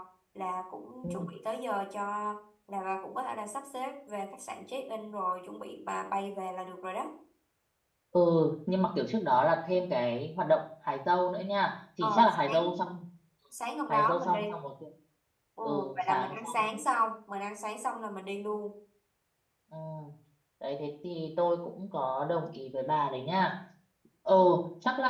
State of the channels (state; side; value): identical; both; correlation 1.00